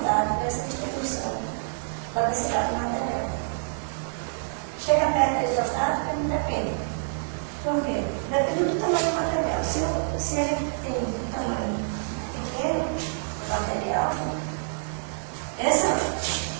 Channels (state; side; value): silent; left; 60 dB below the other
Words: dessa distribuição da densidade do material. Chega perto da isostática, não depende. Por quê? Depende do tamanho do material. Se ele tem um tamanho pequeno, material,